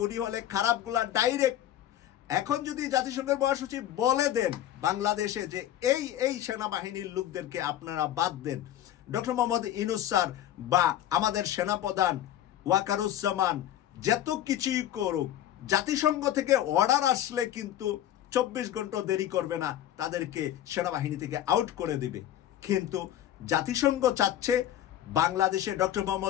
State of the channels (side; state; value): right; quieter; 12.0 dB